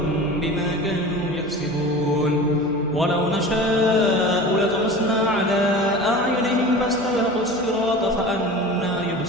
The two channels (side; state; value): right; noise; hum, 21 dB below the sound